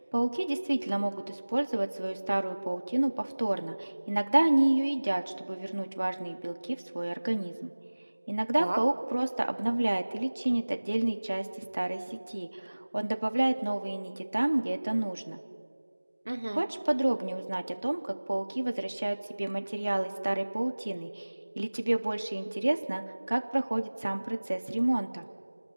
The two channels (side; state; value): both; inverted; correlation -1.00